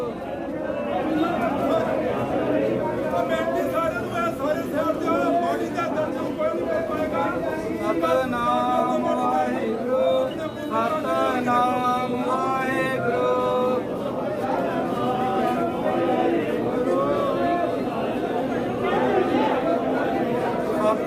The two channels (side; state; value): both; identical; correlation 1.00